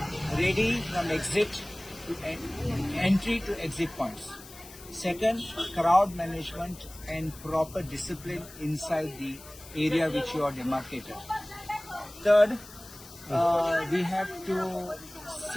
Ready from exit to entry to exit points. Second, crowd management and proper discipline inside the area which you are demarcated. Third, we have to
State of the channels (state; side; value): noise; left; hiss, 18 dB below the sound